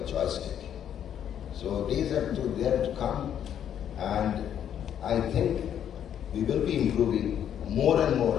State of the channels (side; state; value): right; quieter; 9.6 dB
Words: Joystick. So days are there to come, and I think we will be improving more and